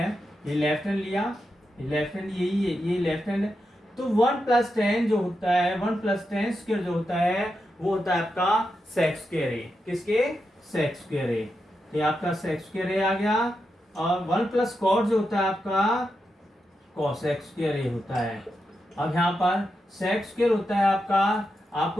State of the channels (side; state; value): both; normal; correlation 0.87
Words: ये लेफ्ट हैंड लिया, ये लेफ्ट हैंड यही है, ये लेफ्ट हैंड है, तो 1 + 10 जो होता है, 1 + 10 स्क्वायर जो होता है वो होता है आपका सेक स्क्वायर ए। किसके, सेक स्क्वायर ए। तो ये आपका सेक स्क्वायर ए आ गया। और 1 + कॉट जो होता है आपका कोसेक स्क्वायर ए होता है। अब यहाँ पर सेक स्क्वायर होता है आपका,